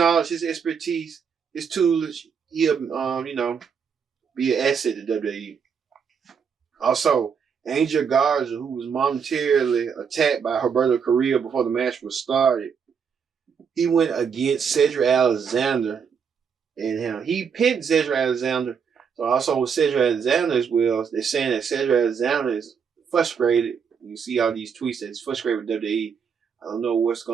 his expertise, his tools, he'll be an asset to WWE. Also, Angel Garza, who was momentarily attacked by Roberto Carrillo before the match was started, he went against Cedric Alexander, and he pinned Cedric Alexander. So also with Cedric Alexander as well, they're saying that Cedric Alexander is frustrated. You see all these tweets that he's frustrated with WWE. I don't know what's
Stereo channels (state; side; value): quieter; left; 6.7 dB